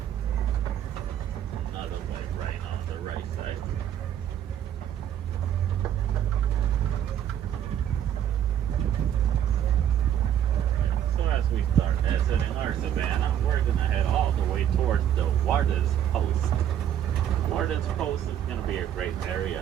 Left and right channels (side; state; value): left; quieter; 10.2 dB